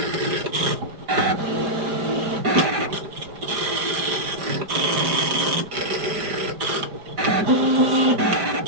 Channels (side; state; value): left; late; 5.0 ms